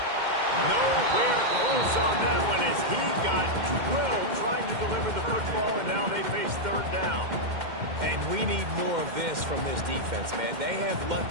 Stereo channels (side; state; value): left; late; 2.1 ms